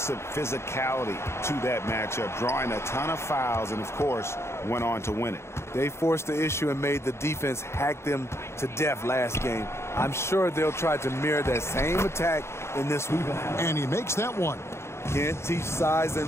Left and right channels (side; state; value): right; late; 0.13 ms